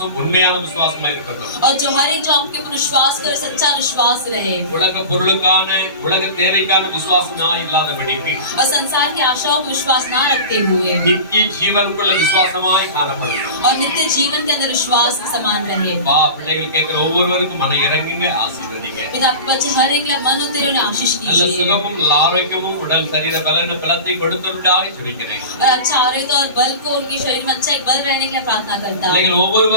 உண்மையான விசுவாசமா இருக்கட்டும். और जो हर एक जो आपके ऊपर विश्वास करे सच्चा विश्वास रहे உலக பொருளுக்கான உலக தேவைக்கான விசுவாசமா இல்லாதபடிக்கு और संसार की आशाओं पर विश्वास ना रखते हुए நித்திய ஜீவனுக்குள்ள விசுவாசமாய் காணப்படும். और नित्य जीवन के अंदर विश्वास के समान रहे பா பிள்ளைகள் கேட்கிற ஒவ்வொருவருக்கும் மன இறங்குங்க, ஆசீர்வதிங்க. पिता आपके बच्चे हर एक लिए मन होते उन्हें आशीष நல்ல कीजिए சுகமும் நல்ல ஆரோக்கியமும் உடல் சரீர பலன பலத்தை கொடுத்தருடாய் ஜெபிக்கிறேன். और अच्छा आरोग्य और बल को उनके शरीर में अच्छा एक बल रहने के लिए प्रार्थना करता हूँ பிள்ளைகள்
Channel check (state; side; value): inverted; both; correlation -0.31